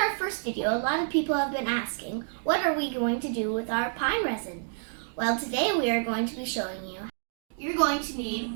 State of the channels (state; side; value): silent; left; digital silence